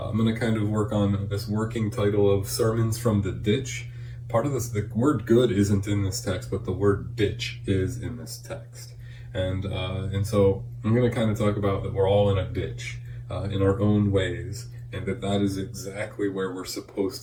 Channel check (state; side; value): identical; both; correlation 1.00